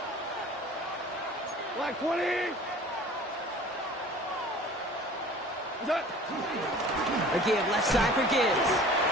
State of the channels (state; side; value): normal; both; correlation 0.45